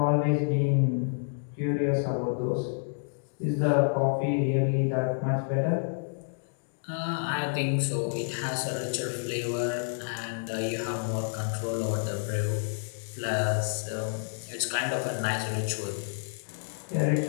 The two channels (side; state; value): right; silent; digital silence